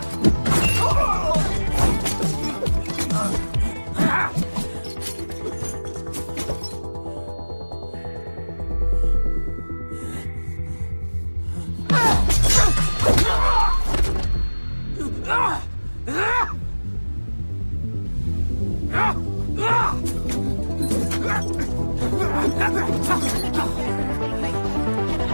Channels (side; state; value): both; inverted; correlation -1.00